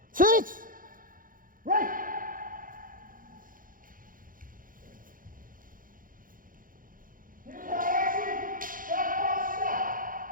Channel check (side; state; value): left; late; 0.40 ms